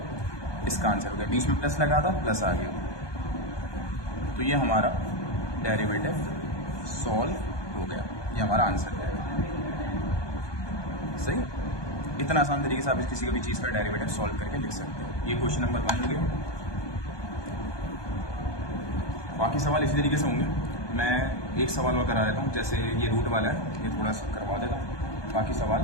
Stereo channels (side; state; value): right; late; 1.2 ms